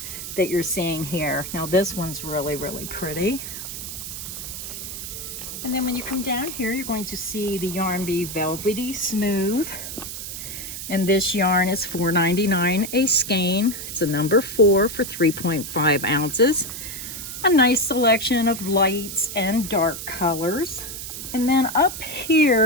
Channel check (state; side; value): noise; right; hiss, 8 dB below the sound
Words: that you're seeing here. Now this one's really, really pretty. And then when you come down here, you're going to see the Yarn Bee Velvety Smooth. And this yarn is $4.99 a skein. It's a number 4 for 3.5 ounces. A nice selection of lights and dark colors. And then up